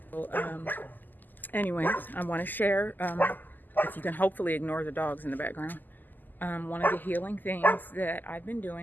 So, anyways, I want to share, if you can hopefully ignore the dogs in the background, one of the healing things that I've been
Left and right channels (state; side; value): late; right; 0.087 ms